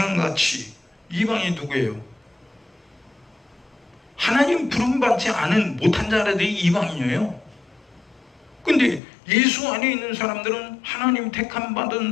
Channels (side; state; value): right; drops out; at 9.0 s